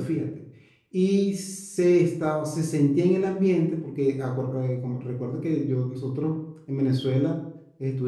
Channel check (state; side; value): identical; both; correlation 1.00